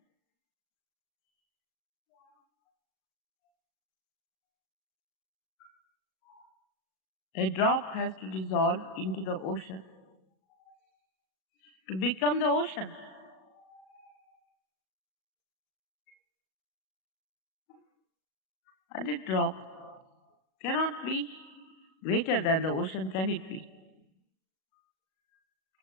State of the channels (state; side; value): late; right; 37 ms